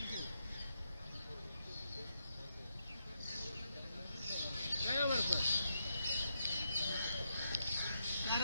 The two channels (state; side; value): inverted; both; correlation -0.82